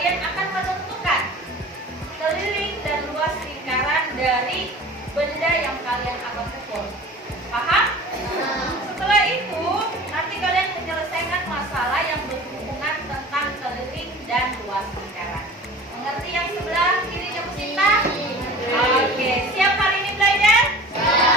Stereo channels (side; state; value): both; normal; correlation 0.40